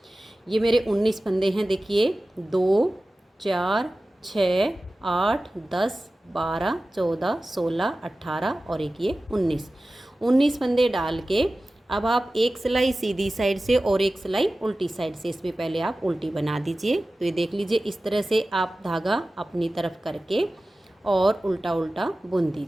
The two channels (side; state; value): both; normal; correlation 0.96